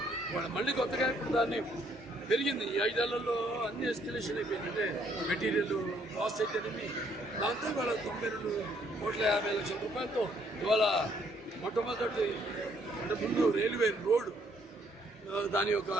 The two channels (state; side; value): normal; both; correlation 0.67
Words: వాళ్ళు మళ్ళీ కొత్తగా ఇప్పుడు దాన్ని పెరిగింది. ఈ 5 ఏళ్లలో అన్ని ఎస్కలేషన్ అయిపోయింది. అంటే మెటీరియల్ కాస్ట్ అయితేనేమి దాంతో ఇవాళ 92,50,00,000 రూపాయలతో ఇవాళ మొట్టమొదటి అంటే ముందు రైల్వే రోడ్ దాని యొక్క